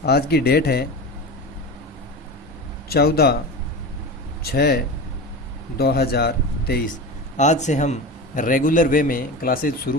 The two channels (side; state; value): both; normal; correlation 0.27